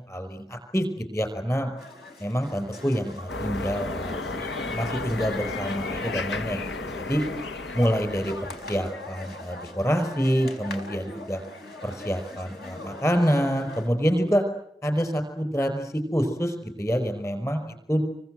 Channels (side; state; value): both; normal; correlation 0.87